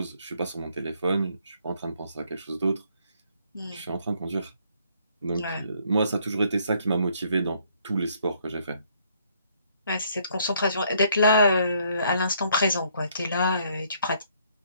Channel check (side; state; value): both; inverted; correlation -0.67